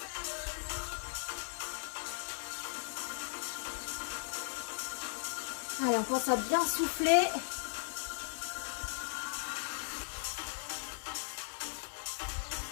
Allez, on pense à bien souffler.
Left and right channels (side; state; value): right; silent; digital silence